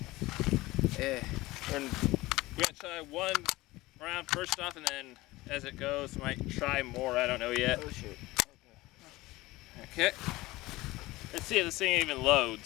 Yeah. And we're gonna try one round first off, and then as it goes, might try more. I don't know yet. Oh shit. Okay. Let's see if this thing even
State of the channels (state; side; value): quieter; right; 19.5 dB